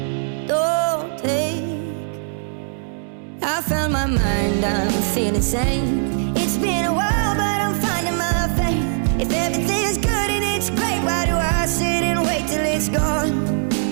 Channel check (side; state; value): left; silent; digital silence